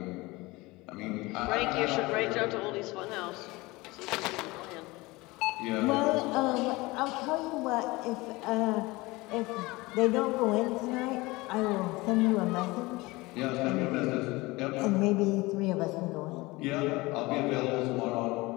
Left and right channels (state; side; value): quieter; right; 22.0 dB